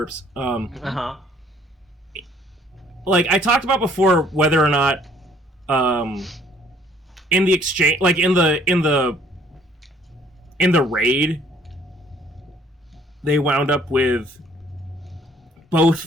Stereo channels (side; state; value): both; normal; correlation 0.60